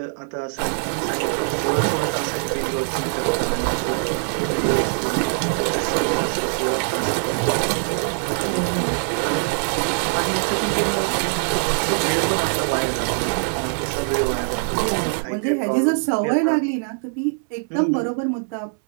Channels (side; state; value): left; silent; 64 dB below the other